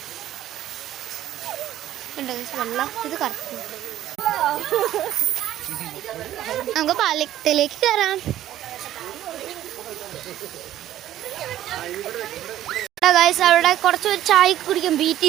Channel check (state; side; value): quieter; left; 12.8 dB